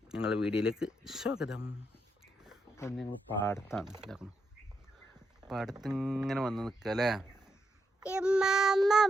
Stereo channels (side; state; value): both; normal; correlation 0.82